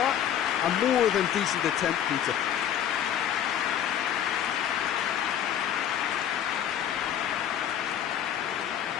A more than decent attempt, Peter.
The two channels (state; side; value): quieter; right; 9.8 dB